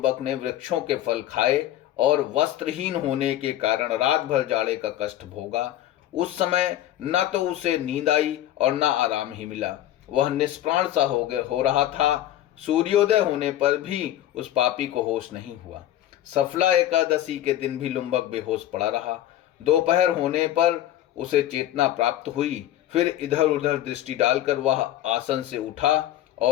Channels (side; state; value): right; quieter; 12.8 dB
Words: ने वृक्षों के फल खाए और वस्त्रहीन होने के कारण रात भर जाड़े का कष्ट भोगा। उस समय न तो उसे नींद आई और न आराम ही मिला। वह निष्प्राण सा हो रहा था। सूर्योदय होने पर भी उस पापी को होश नहीं हुआ। सफला एकादशी के दिन भी लुम्बक बेहोश पड़ा रहा। दोपहर होने पर उसे चेतना प्राप्त हुई। फिर इधर उधर दृष्टि डालकर वह आसन से उठा